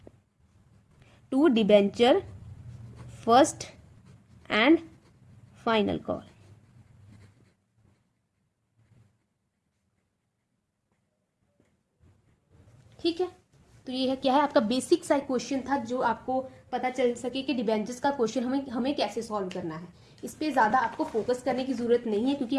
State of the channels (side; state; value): both; identical; correlation 1.00